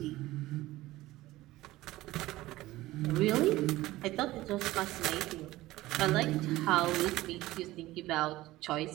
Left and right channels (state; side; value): quieter; left; 17.4 dB